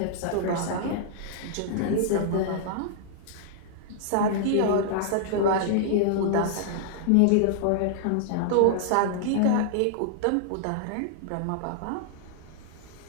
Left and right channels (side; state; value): both; different; correlation -0.01